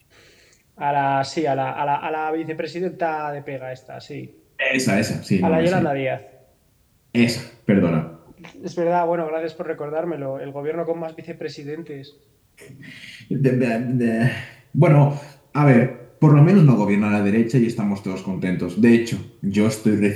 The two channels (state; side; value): identical; both; correlation 1.00